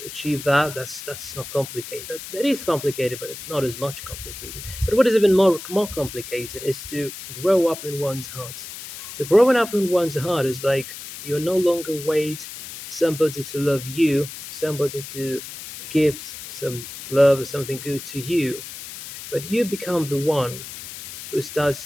achieve that. That's not complicated. That is complicated, but it's not as much complicated. But what is even more complicated is to grow up in one's heart. So growing up in one's heart is like you're no longer wait somebody to love you, somebody to give some love or something good to you, but you become the one who starts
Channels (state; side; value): noise; left; hiss, 11 dB below the sound